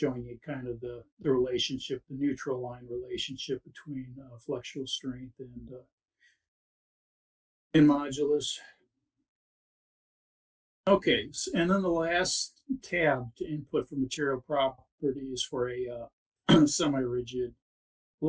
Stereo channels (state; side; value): identical; both; correlation 1.00